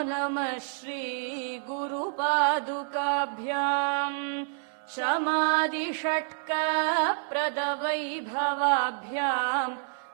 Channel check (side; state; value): left; silent; digital silence